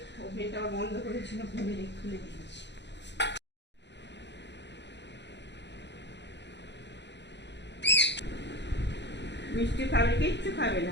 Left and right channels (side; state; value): right; late; 0.51 ms